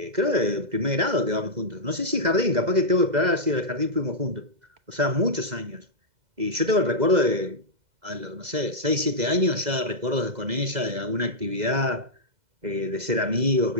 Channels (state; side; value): late; left; 2.0 ms